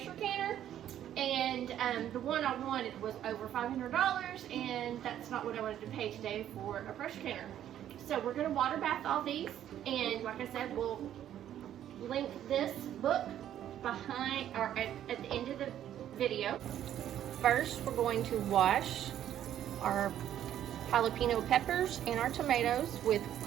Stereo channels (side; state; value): left; quieter; 11.1 dB